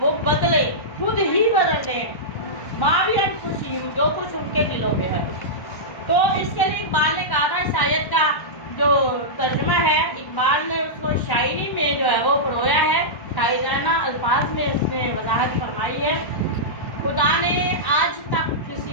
बदले, खुद ही बदल दे मावियत खुशी जो कुछ उनके दिलों में है। तो इसके लिए इकबाल ने कहा था, शायद का जो तर्जुमा है, इकबाल ने उसको शायरी में जो है वो परोया है, शायराना अल्फाज में उसने वजाहत फरमाई है। खुदा ने आज तक किसी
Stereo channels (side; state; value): right; late; 1.1 ms